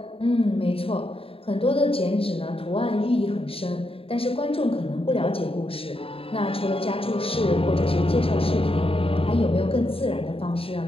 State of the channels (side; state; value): right; late; 0.27 ms